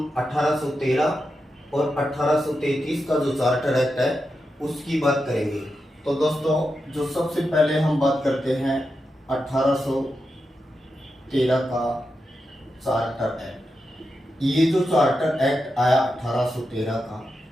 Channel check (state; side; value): normal; both; correlation 0.88